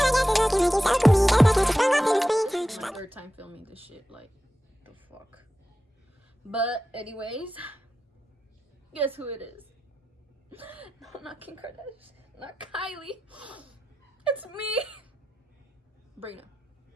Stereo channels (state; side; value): normal; both; correlation 0.92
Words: third time filming this shit, like, the fuck. But anyways, guess who it is? No, not Kim Kardashian, not Kylie. It's me, Brina.